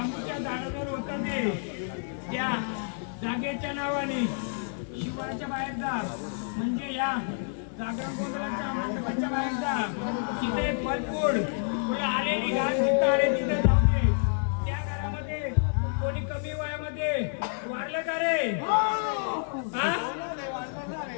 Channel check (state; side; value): silent; right; 59 dB below the other